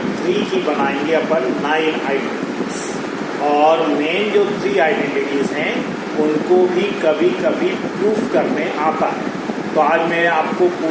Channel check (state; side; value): identical; both; correlation 1.00